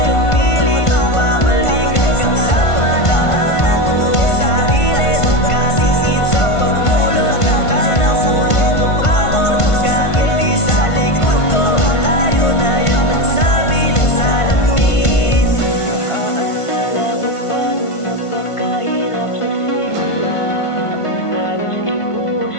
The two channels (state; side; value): late; right; 1.5 ms